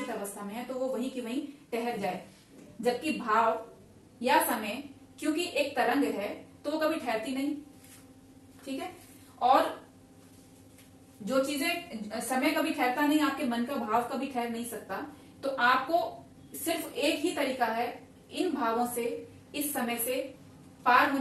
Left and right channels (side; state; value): both; identical; correlation 1.00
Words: अवस्था में है, तो वो वहीं की वहीं ठहर जाए। जबकि भाव या समय क्योंकि एक तरंग है तो वो कभी ठहरती नहीं। ठीक है, और जो चीजें समय कभी ठहरता नहीं, आपके मन का भाव कभी ठहर नहीं सकता। तो आपको सिर्फ एक ही तरीका है इन भावों से, इस समय से पार